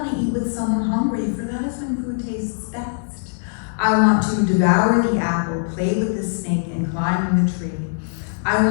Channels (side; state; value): right; silent; digital silence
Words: to eat with someone hungry, for that is when food tastes best. I want to devour the apple, play with the snake, and climb in the tree. I